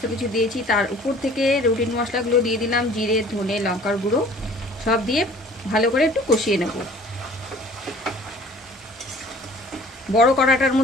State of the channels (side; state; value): both; normal; correlation 0.50